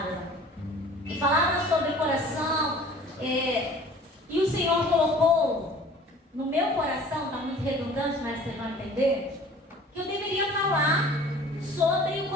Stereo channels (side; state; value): both; normal; correlation 0.47